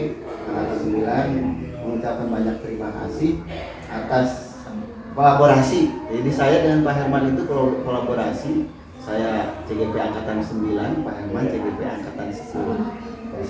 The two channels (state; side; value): identical; both; correlation 1.00